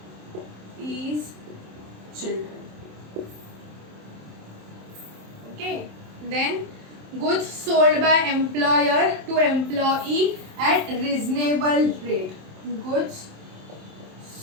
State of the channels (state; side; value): late; left; 27 ms